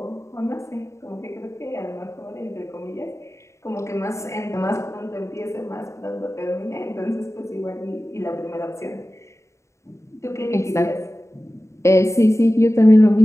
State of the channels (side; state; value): right; late; 0.14 ms